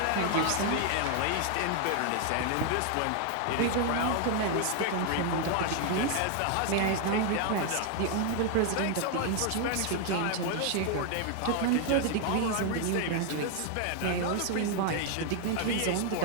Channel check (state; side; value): different; both; correlation 0.00